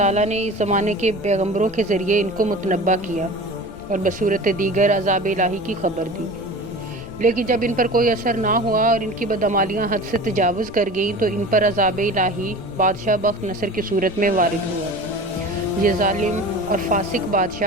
نے اس زمانے کے پیغمبروں کے ذریعے ان کو متنبع کیا اور بصورت دیگر عذاب الہی کی خبر دی، لیکن جب ان پر کوئی اثر نہ ہوا اور ان کی بدعمالیاں حد سے تجاوز کر گئیں تو ان پر عذاب الہی بادشاہ بخت نصر کی صورت میں وارد ہوا۔ یہ ظالم اور فاسق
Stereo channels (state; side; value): noise; left; rumble, 19 dB below the sound